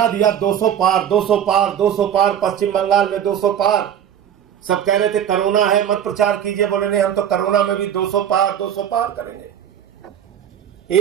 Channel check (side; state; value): left; quieter; 9.5 dB